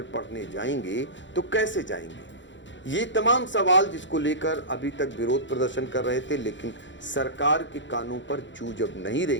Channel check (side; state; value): right; late; 0.54 ms